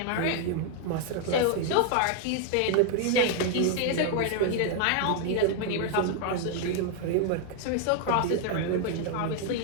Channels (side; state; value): both; different; correlation 0.00